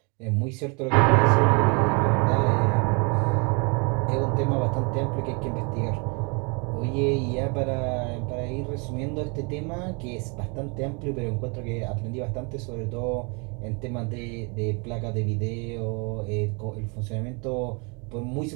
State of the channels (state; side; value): quieter; left; 32.7 dB